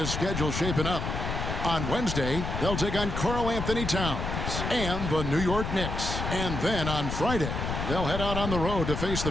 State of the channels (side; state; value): left; noise; rumble, 3 dB below the sound